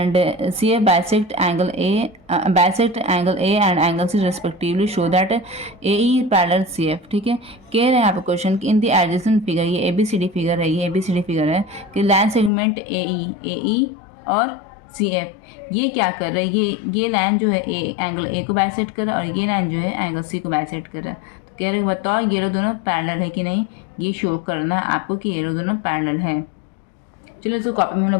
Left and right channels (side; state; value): right; drops out; at 12.5 s